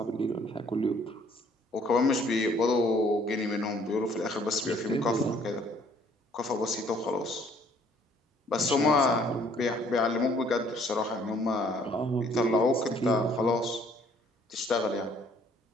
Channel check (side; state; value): both; normal; correlation 0.61